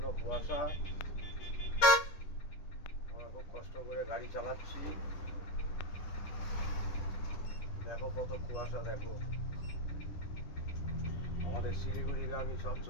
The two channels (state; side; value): late; right; 10 ms